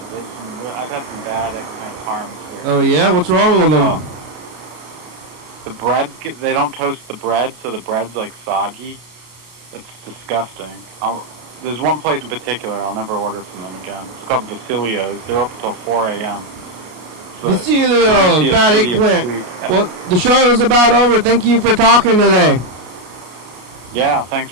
I've had some bad eggplant parms here. Oh yeah, what's wrong with them? The bread, they don't toast the bread, so the bread's like soggy. It's disgusting. There's one place in particular I'll never order from them again. It's called Vasilio's. They're open till 4 a.m. Vasilio's, bad eggplant. Well, the show is about over. Thank you for talking today. Yeah, thanks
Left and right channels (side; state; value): left; late; 33 ms